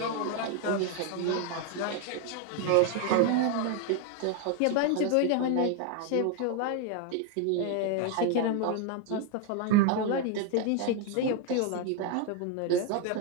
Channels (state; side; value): different; both; correlation 0.01